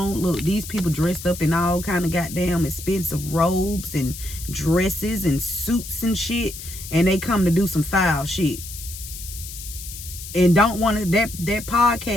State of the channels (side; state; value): left; noise; hiss, 11 dB below the sound